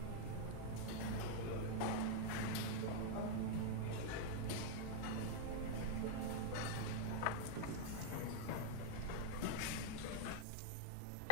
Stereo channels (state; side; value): different; both; correlation -0.01